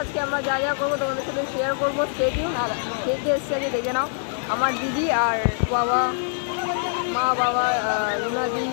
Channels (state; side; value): silent; right; 63 dB below the other